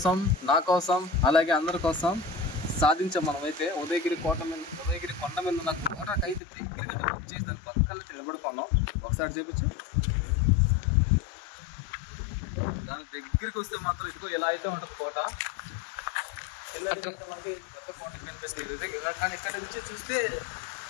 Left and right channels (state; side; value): drops out; right; at 6.4 s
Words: నా కోసం, అలాగే అందరి కోసం సాధించాం మనమైతే. ఉదయగిరి కొండ మీద ఉన్న కోటకైతే దగ్గరగా వచ్చేసి దాని పక్కన నుంచి నిలబడుకున్నాం. ఒకసారి చూపించు. దాని దగ్గరికి వస్తే మాత్రం ఇదిగో ఇలా అయితే ఉంటుంది కోట. మనకి పెద్ద కోట కనిపిస్తుంది, కానీ ఇక్కడ నుంచి చూస్తే